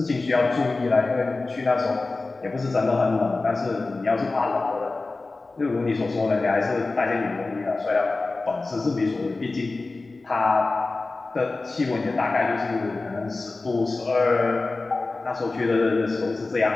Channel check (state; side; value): quieter; right; 3.5 dB